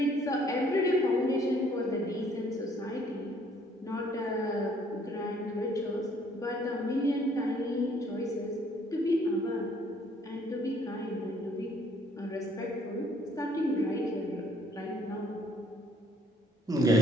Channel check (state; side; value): normal; both; correlation 0.62